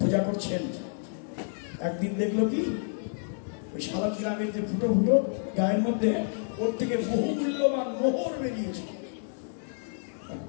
করছেন, একদিন দেখলো কি ওই শালগ্রামের যে ফুটো ফুটো গায়ের মধ্যে ওর থেকে বহু মূল্যবান মোহর বেরিয়েছে।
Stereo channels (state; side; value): silent; right; digital silence